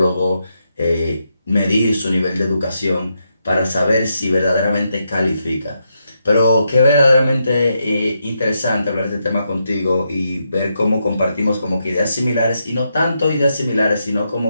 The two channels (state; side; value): inverted; both; correlation -0.82